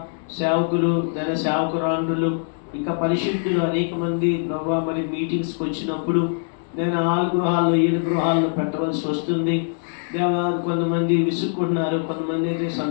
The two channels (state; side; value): silent; right; digital silence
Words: సేవకులు, ధన సేవకురాండ్రులు, ఇంకా పరిశుద్ధులు అనేక మంది ప్రభా మరి మీటింగ్స్కి వచ్చినప్పుడు నేను 6 గృహాల్లో 7 గృహాల్లో పెట్టవలసి వస్తుంది దేవా. కొంతమంది విసుక్కుంటున్నారు, కొంతమంది అయితే